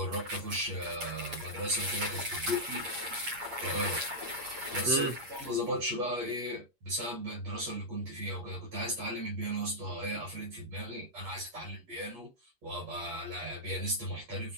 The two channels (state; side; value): late; left; 8.4 ms